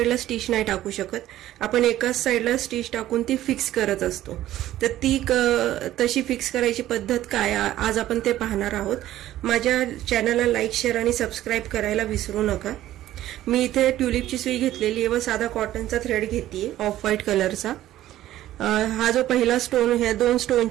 स्टिच नाही टाकू शकत, आपण एकाच साइडला स्टिच टाकून ती फिक्स करत असतो। तर ती तशी फिक्स करायची पद्धत काय आज आपण ते पाहणार आहोत। माझ्या चॅनलला लाईक, शेअर आणि सबस्क्राइब करायला विसरू नका। मी इथे ट्यूलिपची सुई घेतलेली आहे व साधा कॉटनचा थ्रेड घेतलीये ऑफ व्हाईट कलरचा। हा जो पहिला स्टोन, ह्या दोन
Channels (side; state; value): left; quieter; 13.8 dB